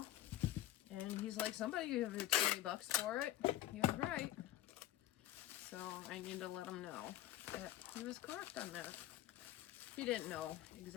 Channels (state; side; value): quieter; right; 14.2 dB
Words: And he's like, somebody gave you 20 bucks for it. He was right. So I need to let him know that he was correct on that. He didn't know